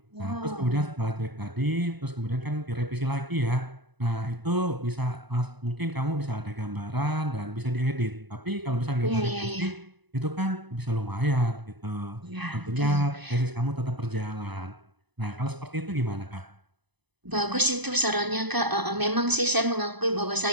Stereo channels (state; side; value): late; left; 0.99 ms